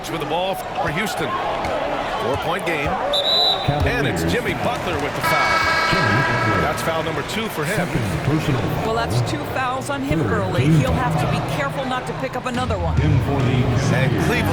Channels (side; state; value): both; identical; correlation 1.00